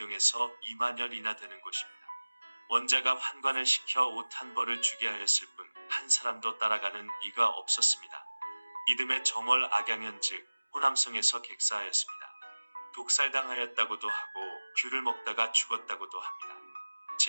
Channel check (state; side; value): inverted; both; correlation -1.00